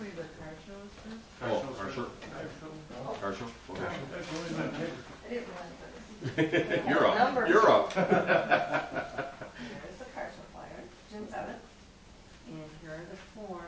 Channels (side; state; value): both; identical; correlation 1.00